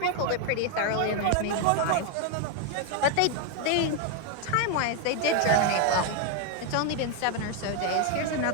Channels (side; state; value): both; different; correlation 0.01